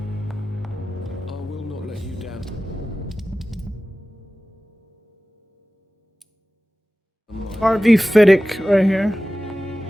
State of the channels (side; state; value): both; normal; correlation 0.96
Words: I will not let you down. RV Fiddick right here.